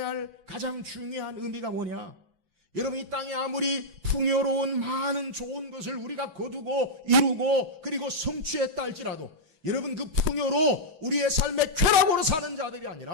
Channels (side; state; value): left; late; 6.0 ms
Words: 할 가장 중요한 의미가 뭐냐? 여러분, 이 땅에 아무리 풍요로운 많은 좋은 것을 우리가 거두고 이루고 그리고 성취했다 할지라도 여러분, 그 풍요로 우리의 삶의 쾌락으로 사는 자들이